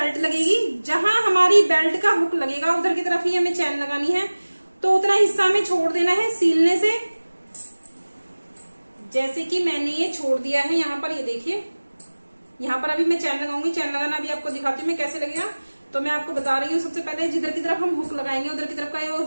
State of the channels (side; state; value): both; inverted; correlation -1.00